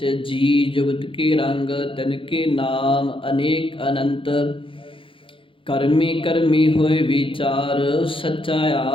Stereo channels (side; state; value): right; late; 0.25 ms